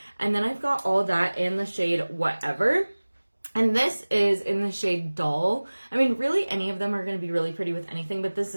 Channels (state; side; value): inverted; both; correlation -1.00